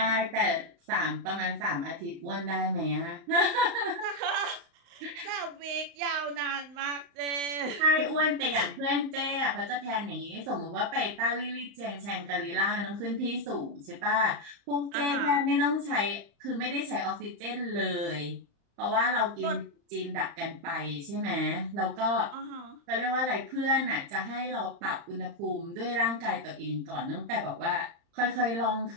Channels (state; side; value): late; left; 35 ms